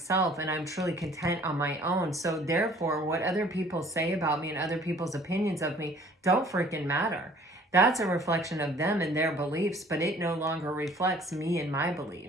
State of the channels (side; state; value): both; normal; correlation 0.54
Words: and I'm truly content on my own. So therefore, what other people say about me and other people's opinions of me don't freaking matter. That's a reflection of them and their beliefs, but it no longer reflects me and my